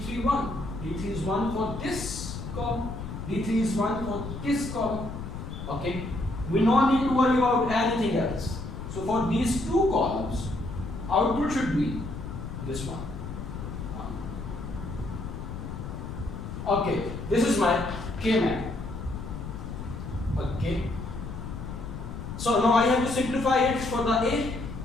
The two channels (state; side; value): noise; left; rumble, 8 dB below the sound